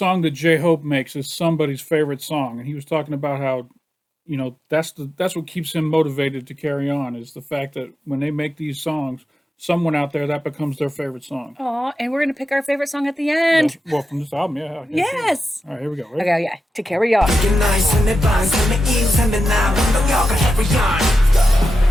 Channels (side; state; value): both; normal; correlation 0.91